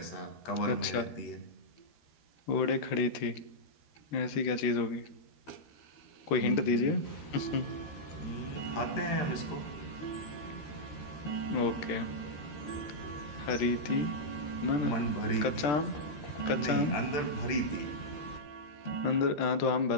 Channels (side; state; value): right; late; 13 ms